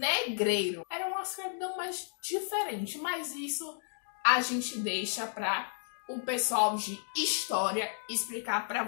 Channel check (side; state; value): right; silent; digital silence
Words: Era uma escravidão mais diferente, mas isso a gente deixa para o pessoal de história explicar para